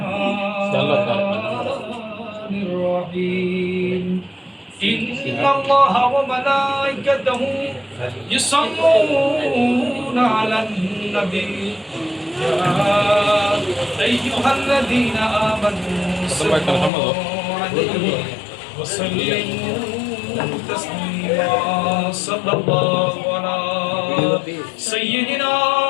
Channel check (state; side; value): drops out; right; at 16.9 s